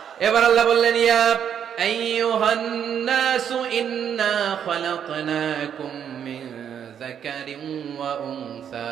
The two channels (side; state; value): left; quieter; 8.6 dB